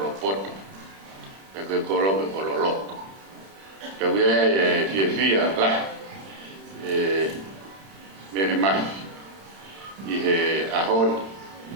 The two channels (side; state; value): left; late; 31 ms